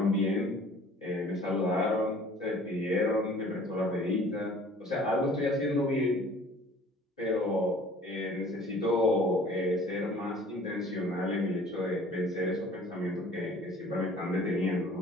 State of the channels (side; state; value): both; normal; correlation 0.50